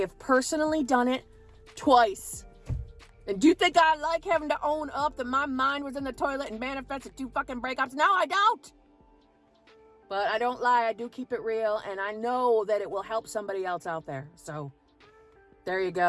personally done it twice. And do you think I like having to own up that my mind was in the toilet and manifested 2 fucking breakups? No, I don't. But I don't lie. I do keep it real. And I know that it will help somebody else out there. So there you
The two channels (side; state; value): both; identical; correlation 1.00